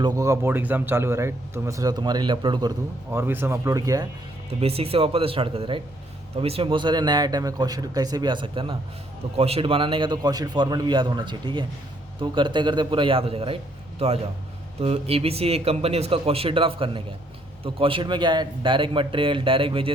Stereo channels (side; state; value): both; normal; correlation 0.68